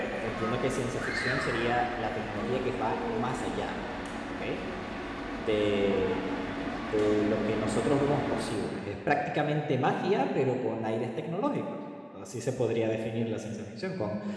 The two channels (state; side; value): identical; both; correlation 1.00